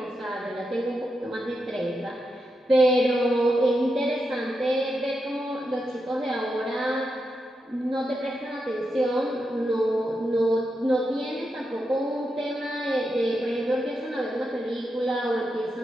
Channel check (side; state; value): both; normal; correlation 0.86